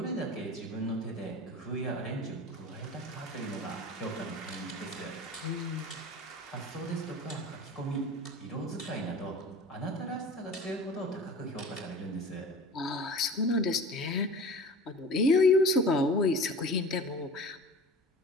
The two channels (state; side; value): normal; both; correlation 0.38